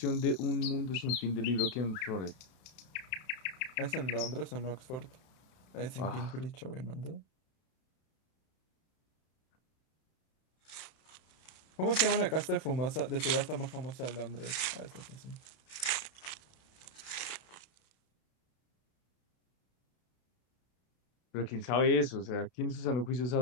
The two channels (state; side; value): late; right; 31 ms